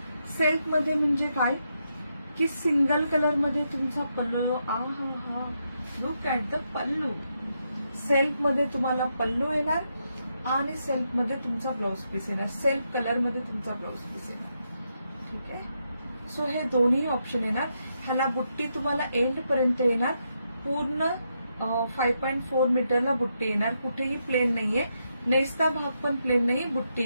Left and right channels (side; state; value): both; inverted; correlation -0.81